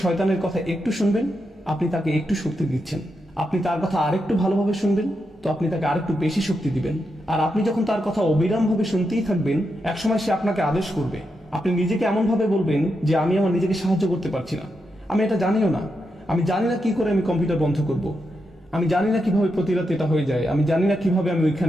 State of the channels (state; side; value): normal; both; correlation 0.85